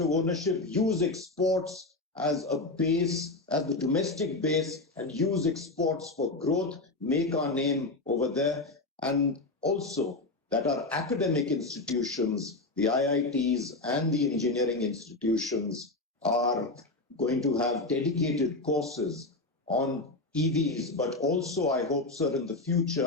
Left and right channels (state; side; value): quieter; right; 3.1 dB